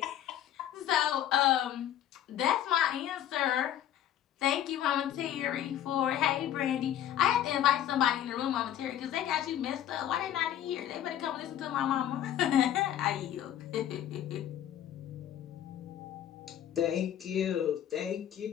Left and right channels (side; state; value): right; quieter; 11.1 dB